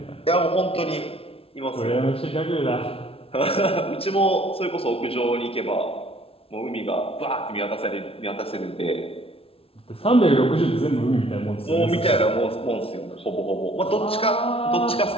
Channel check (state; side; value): late; right; 0.27 ms